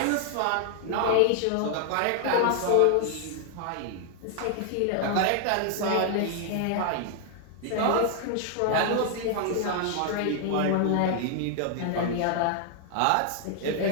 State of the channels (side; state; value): both; different; correlation 0.00